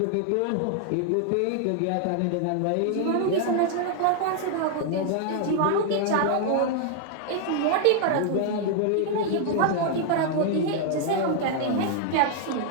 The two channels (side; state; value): both; different; correlation 0.00